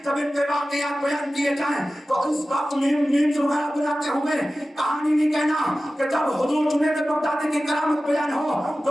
جب ان کے واقعات بیان کیے جائیں تو اس وقت میمز وغیرہ بناتے ہوئے کہانی نہیں کہنا کہ جب حضور جنید بغدادی کی کرامت بیان ہو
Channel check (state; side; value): normal; both; correlation 0.95